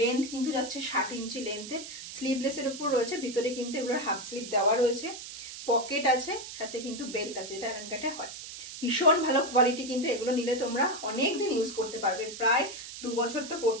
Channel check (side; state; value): right; noise; hiss, 11 dB below the sound